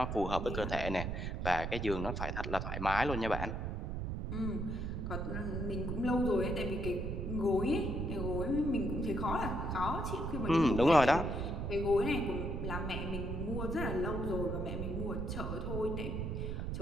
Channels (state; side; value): noise; right; rumble, 3 dB below the sound